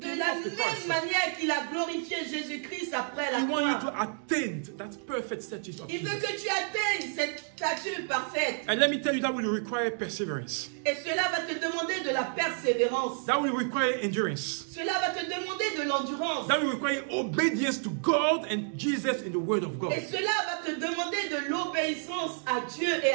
came la off the même cross. manière qu'il a glorifié Jésus-Christ après la He wants you to croix. attain that perfect status of Il veut Jesus. que tu atteignes cette stature parfaite. And let me tell you, that will require perseverance. Et cela va te demander de la persévérance. That will require endurance. Cela va te demander de l'endurance. That will require obedience to God and Jesus in the Word of God. Et cela va te demander de l'obéissance à Dieu et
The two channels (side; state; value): left; silent; 58 dB below the other